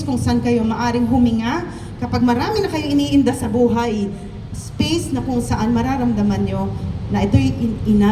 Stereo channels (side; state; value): both; identical; correlation 1.00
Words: kung saan kayo maaring huminga, kapag marami na kayo iniinda sa buhay, space na kung saan mararamdaman nyo na ito'y